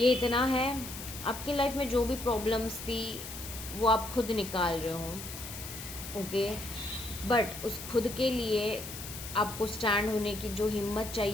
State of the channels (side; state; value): left; noise; hiss, 10 dB below the sound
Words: इतना है। आपकी लाइफ में जो भी प्रॉब्लम्स थी वो आप खुद निकाल रहे हो। ओके, बट उस खुद के लिए आपको स्टैंड होने की जो हिम्मत